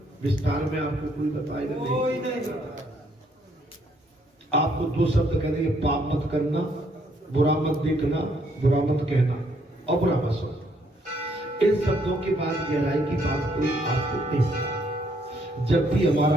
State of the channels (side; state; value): both; normal; correlation 0.69